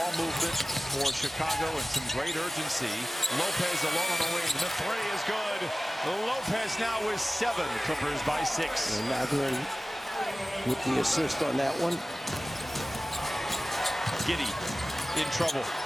movement for Chicago and some great urgency. Lopez alone on the wing. The three is good. Lopez now with 7. Clippers by 6. And Mathurin with the assist on that one. Giddey in trouble.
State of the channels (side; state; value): both; normal; correlation 0.97